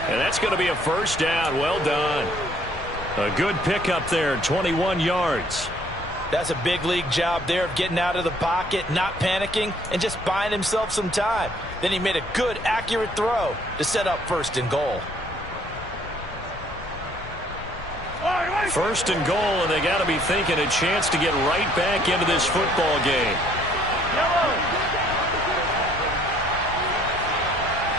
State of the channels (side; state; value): left; noise; rumble, 16 dB below the sound